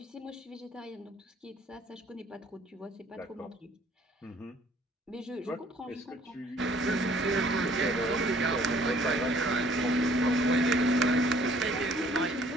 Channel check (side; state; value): both; normal; correlation 0.59